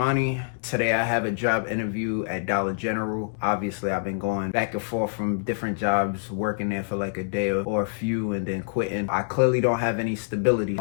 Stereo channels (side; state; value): right; silent; digital silence